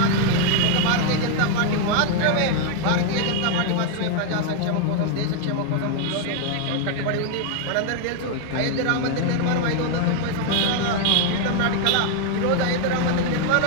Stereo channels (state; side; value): different; both; correlation 0.00